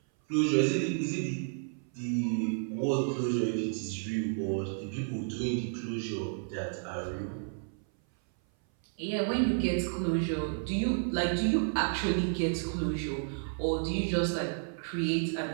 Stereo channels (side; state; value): left; silent; 57 dB below the other